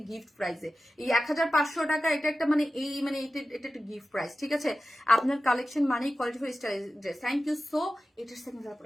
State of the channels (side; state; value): both; normal; correlation 0.94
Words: গিফট প্রাইসে এই 1500 টাকা, এটা একটা মানে এটা একটা গিফট প্রাইস, ঠিক আছে? আপনার কালেকশন মানেই quality full style dress. Thank you so. এটার সেকেন্ড তারপর